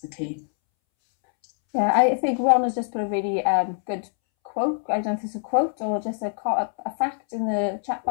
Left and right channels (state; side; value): silent; right; 62 dB below the other